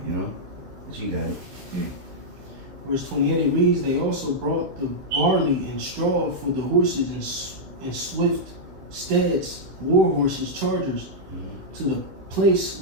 But you got it. Verse 28, it reads, they also brought the barley and straw for the horses and swift steeds, war horses, chargers, to the place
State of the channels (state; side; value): late; left; 16 ms